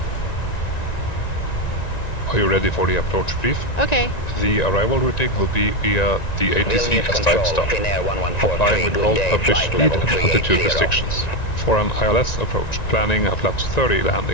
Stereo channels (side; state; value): right; late; 1.9 ms